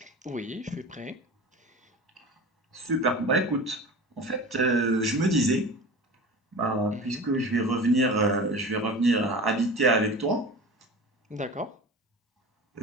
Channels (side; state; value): both; normal; correlation 0.34